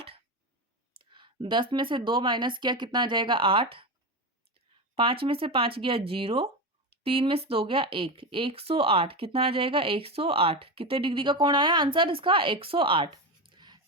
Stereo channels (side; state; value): both; normal; correlation 0.18